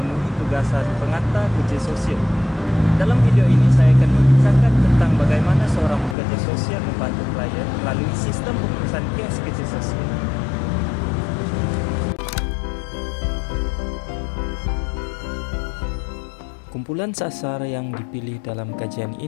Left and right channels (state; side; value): drops out; right; at 6.2 s